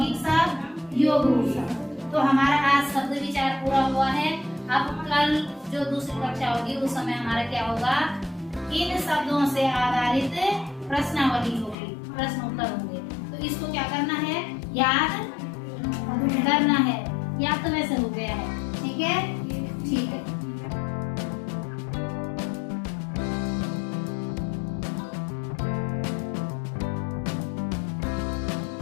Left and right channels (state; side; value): drops out; right; at 11.8 s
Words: शब्द, योग रूढ़ शब्द। तो हमारा आज शब्द विचार पूरा हुआ है। अब कल जो दूसरी कक्षा होगी उस समय हमारा क्या होगा? इन शब्दों से आधारित प्रश्नावली होगी, प्रश्न उत्तर होंगे। तो इसको क्या करना है? याद करना है। याद तो वैसे हो गया है। ठीक है, ठीक है।